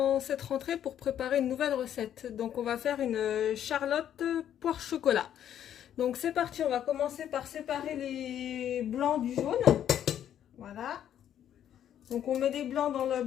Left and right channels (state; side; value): quieter; right; 10.3 dB